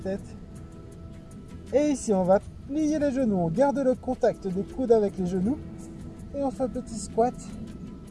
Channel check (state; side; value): identical; both; correlation 1.00